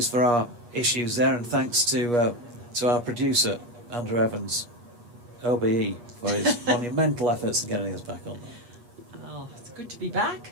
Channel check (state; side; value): late; left; 8.4 ms